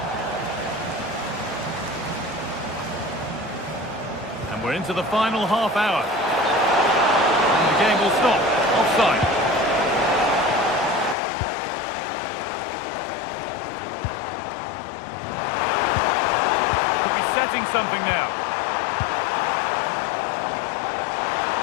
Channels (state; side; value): drops out; right; at 11.2 s